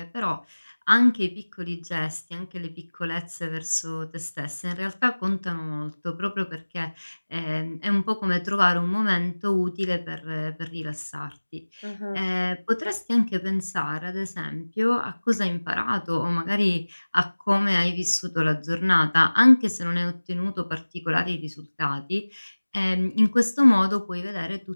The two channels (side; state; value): both; inverted; correlation -1.00